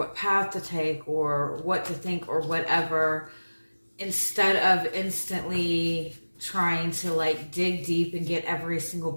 path to take or what to think or whatever, instead of instantly trying to like dig deep and get every single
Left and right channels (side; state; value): both; inverted; correlation -1.00